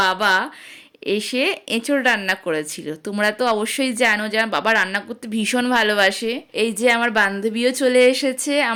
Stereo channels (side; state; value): both; identical; correlation 1.00